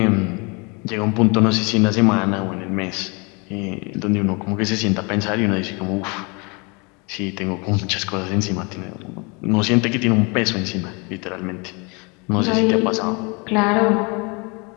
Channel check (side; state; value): right; quieter; 30.2 dB